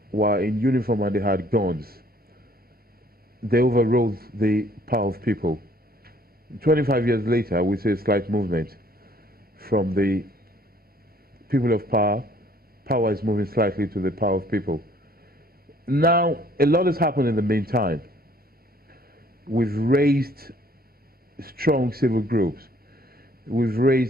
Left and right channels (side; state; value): both; normal; correlation 0.60